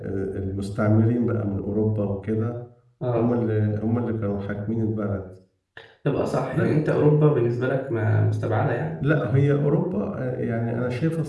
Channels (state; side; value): identical; both; correlation 1.00